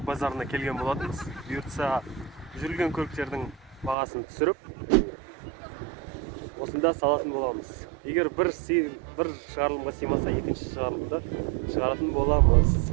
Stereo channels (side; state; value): left; drops out; at 4.0 s